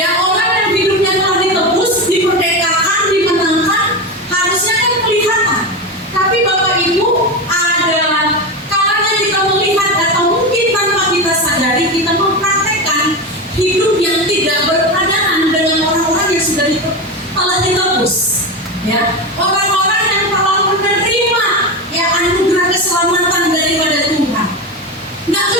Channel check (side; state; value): both; normal; correlation 0.19